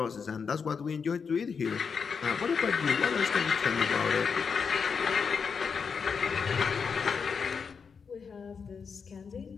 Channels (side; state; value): right; quieter; 5.9 dB